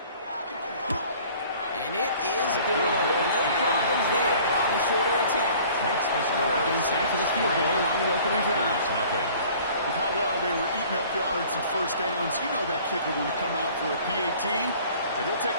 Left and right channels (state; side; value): inverted; both; correlation -0.50